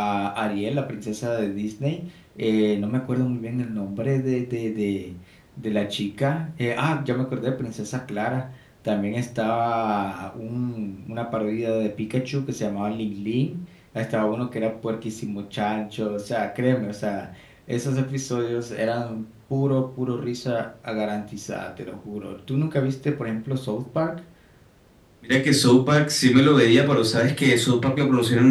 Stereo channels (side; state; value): both; identical; correlation 1.00